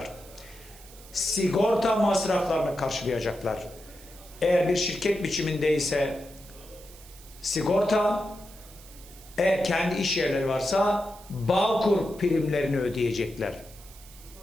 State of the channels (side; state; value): right; noise; hiss, 21 dB below the sound